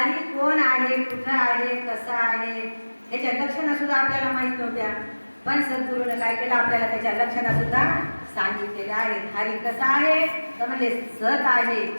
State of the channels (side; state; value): both; inverted; correlation -1.00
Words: कोण आहे, कुठं आहे, कसा आहे याच्या लक्षणं सुद्धा आपल्याला माहित नव्हत्या. पण सद्गुरूने काय केलं आपल्याला त्याच्या लक्षणं सुद्धा सांगितलेल्या आहेत. हरी कसा आहे तर म्हणजे सत आहे,